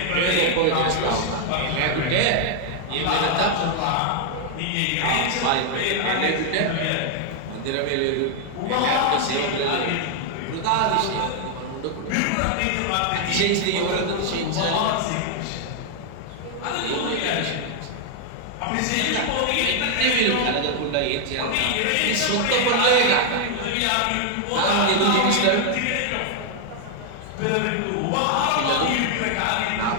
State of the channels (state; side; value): different; both; correlation 0.00